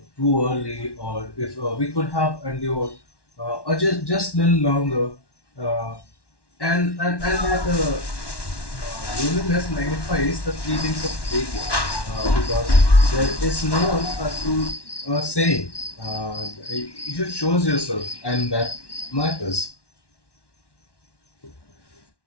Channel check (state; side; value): late; right; 1.1 ms